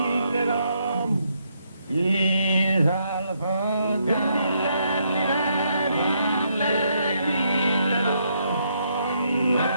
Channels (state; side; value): inverted; both; correlation -0.75